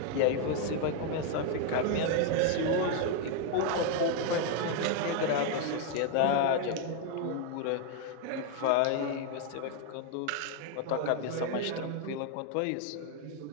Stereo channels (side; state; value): both; different; correlation 0.01